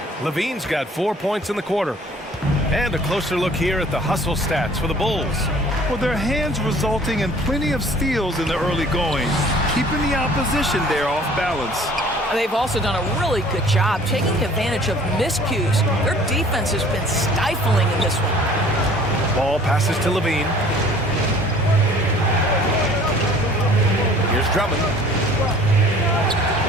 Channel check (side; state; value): both; normal; correlation 0.51